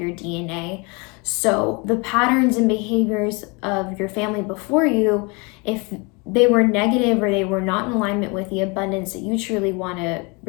DNA. So the patterns and behaviors of your family before you, if they were negative or they were not in alignment with the abundance that you truly want to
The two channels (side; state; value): right; quieter; 29.8 dB